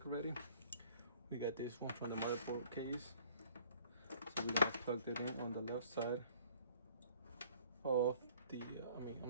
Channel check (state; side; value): inverted; both; correlation -0.55